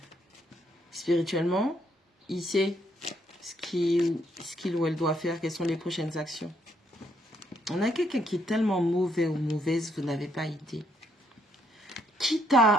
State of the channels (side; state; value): both; normal; correlation 0.72